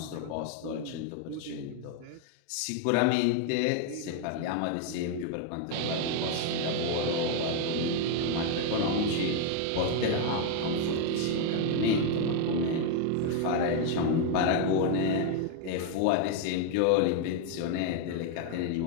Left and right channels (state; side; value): different; both; correlation 0.01